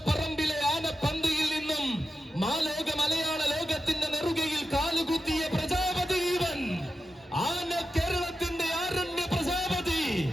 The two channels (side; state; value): both; normal; correlation 0.91